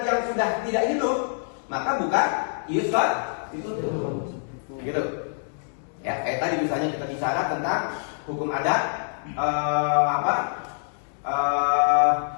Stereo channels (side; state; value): right; silent; digital silence